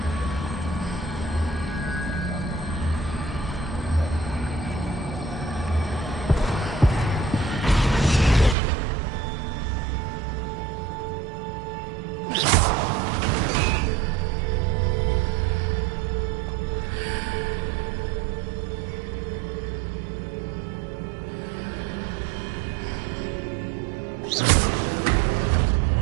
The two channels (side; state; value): left; drops out; at 8.6 s